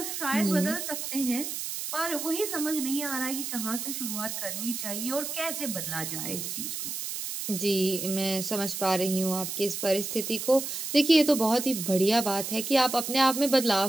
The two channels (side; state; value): right; noise; hiss, 5 dB below the sound